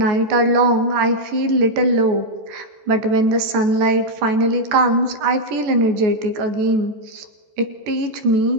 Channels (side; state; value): left; late; 14 ms